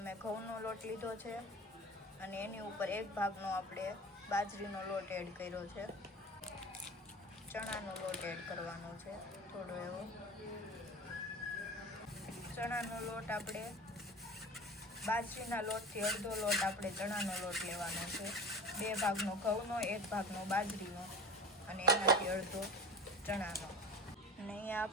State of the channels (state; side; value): normal; both; correlation 0.34